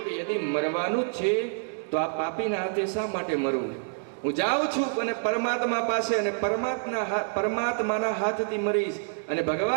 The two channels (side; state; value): left; silent; digital silence